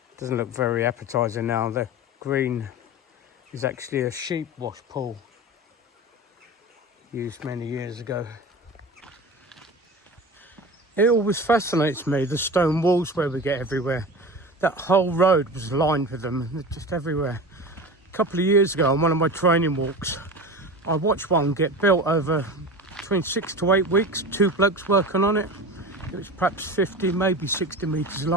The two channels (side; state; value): both; normal; correlation 0.31